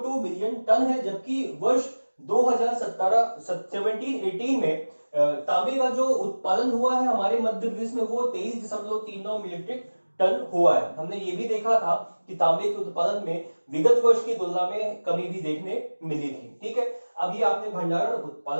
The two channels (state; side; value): inverted; both; correlation -1.00